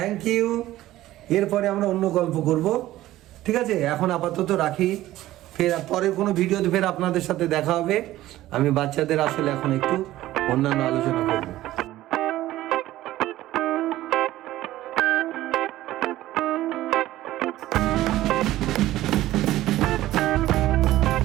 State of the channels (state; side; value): quieter; left; 15.3 dB